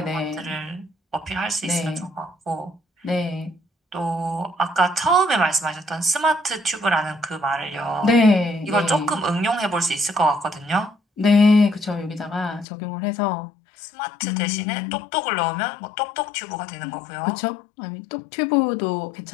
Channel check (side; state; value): right; drops out; at 12.7 s